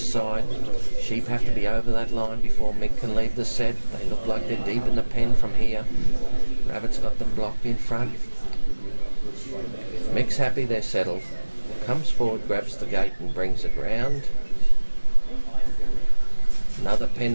side. Sheep have to be over that line before Mick can leave the set. They look like they're deep in the pen from here. Rabbit's got them blocked in front. Mick's happy they're settled. Comes forward, grabs the gate and brings it round. Another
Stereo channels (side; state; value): both; inverted; correlation -1.00